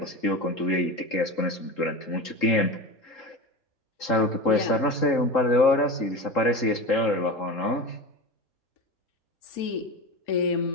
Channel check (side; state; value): right; late; 3.8 ms